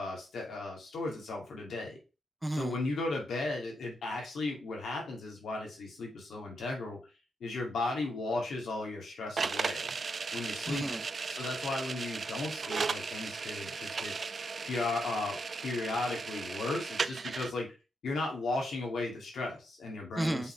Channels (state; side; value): normal; both; correlation 0.81